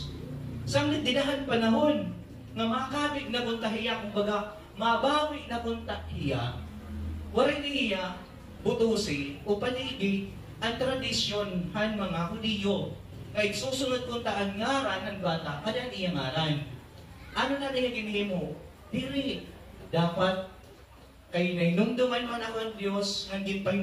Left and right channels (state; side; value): identical; both; correlation 1.00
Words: Samlit dinahan panahon, nga makabig na puntahiya, kumbaga, mabawi na puntahiya, waray niya, butusi, o panigi, ang tradisyon han mga Hudiyo, kaya susunod kong taan ngaran ng bata, kada niya ngaran. Ano na niya ginhimo? Diri. Dapat, kay nainumduman man ako ang Diyos, nangin